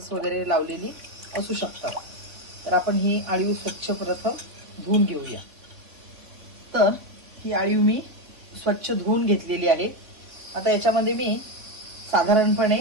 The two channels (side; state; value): left; late; 3.7 ms